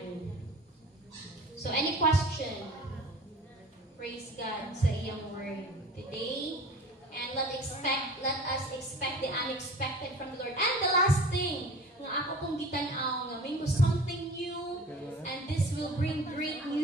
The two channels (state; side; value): normal; both; correlation 0.41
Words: So, any question? Praise God sa iyang word today. And let us expect the unexpected from the Lord. And the last thing, nga ako pong gitanaw, nga may something new, and this will bring great